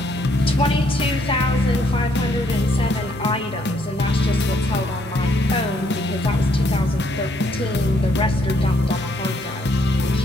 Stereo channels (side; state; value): both; normal; correlation 0.70